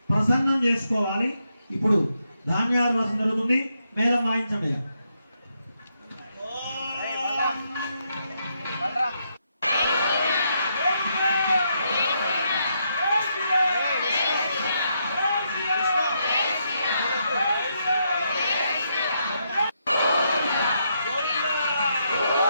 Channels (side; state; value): both; inverted; correlation -0.79